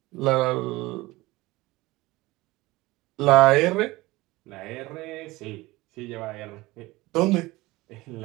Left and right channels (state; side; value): quieter; left; 20.3 dB